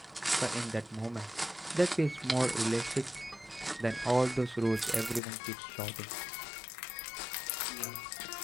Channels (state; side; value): drops out; right; at 5.2 s